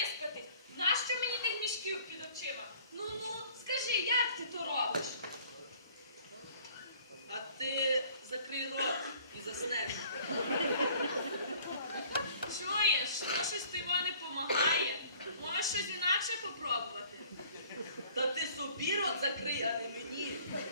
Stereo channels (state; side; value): inverted; both; correlation -0.54